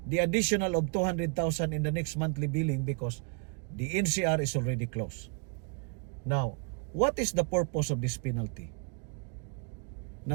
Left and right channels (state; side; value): quieter; left; 38.3 dB